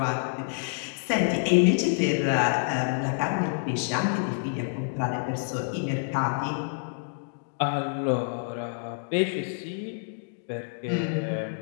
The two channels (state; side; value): silent; right; digital silence